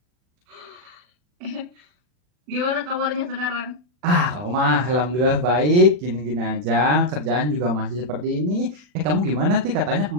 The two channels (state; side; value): late; left; 40 ms